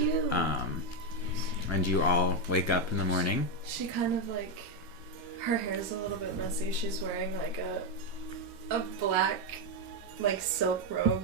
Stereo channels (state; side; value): normal; both; correlation 0.05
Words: And you all wake up in the morning. She kind of like... Her hair's a little bit messy. She's wearing like a black like silk robe.